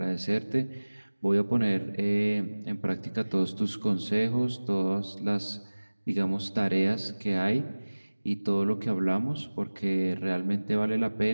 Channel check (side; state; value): both; inverted; correlation -1.00